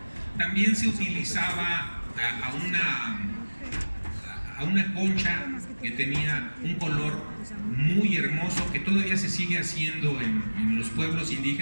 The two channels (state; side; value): inverted; both; correlation -1.00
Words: También se utilizaba a una concha que tenía un color muy hermoso, que todavía se sigue haciendo en los pueblos